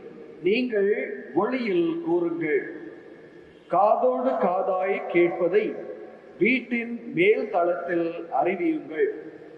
நீங்கள் ஒளியில் கூறுங்கள். காதோடு காதாய் கேட்பதை வீட்டின் மேல் தளத்தில் அறிவியுங்கள்.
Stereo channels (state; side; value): identical; both; correlation 1.00